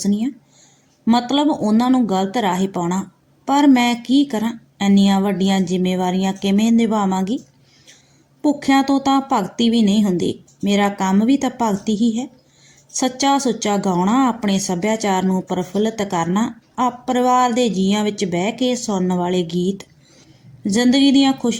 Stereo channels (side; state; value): both; identical; correlation 1.00